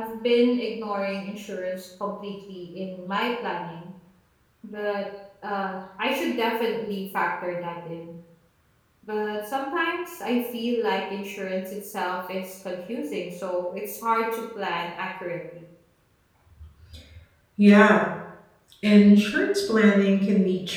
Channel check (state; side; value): identical; both; correlation 1.00